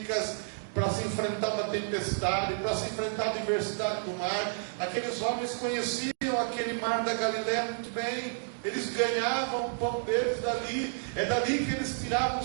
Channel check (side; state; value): left; silent; digital silence